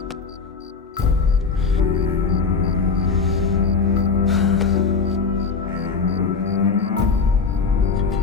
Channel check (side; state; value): right; quieter; 5.0 dB